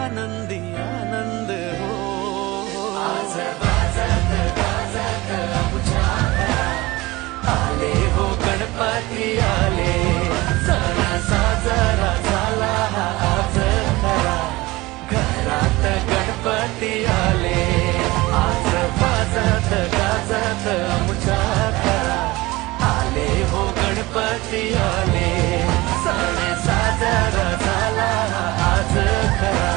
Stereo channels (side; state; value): left; quieter; 20.6 dB